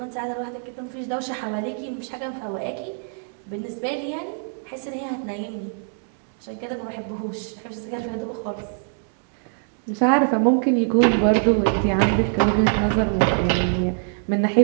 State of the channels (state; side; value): silent; left; 59 dB below the other